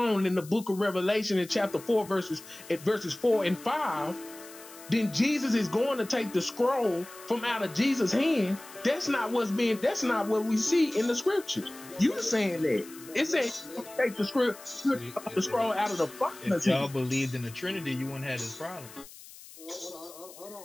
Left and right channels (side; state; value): left; noise; hiss, 18 dB below the sound